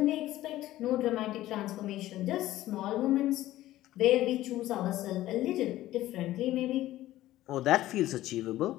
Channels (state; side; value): quieter; right; 15.0 dB